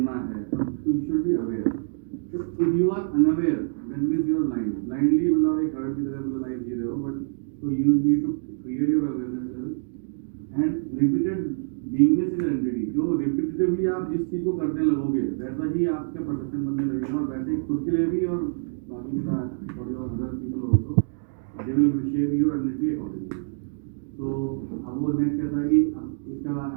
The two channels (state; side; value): silent; left; digital silence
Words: है सब, तो यू शुड बी अवेयर। तो if you are unaware that means you are blind. Blindly मतलब एक हर्ट की तरह मतलब लाइफ जी रहे हो, बट तो you need to create your awareness level and repeated beingness is identity. जो रिपीटेटिवली आप जिस चीज को करने लगोगे वैसा ही आपका परसेप्शन बनने लगेगा, और वैसे ही खुद के लिए भी और बाकी for your other people also they will shape your identity accordingly. So अब वो नेक्स्ट कहता है कि अब इसका